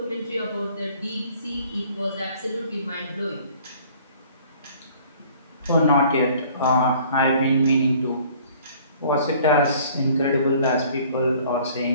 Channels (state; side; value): inverted; both; correlation -0.54